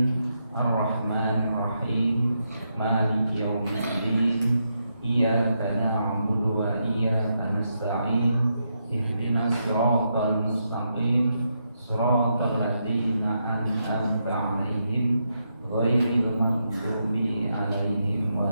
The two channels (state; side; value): inverted; both; correlation -0.82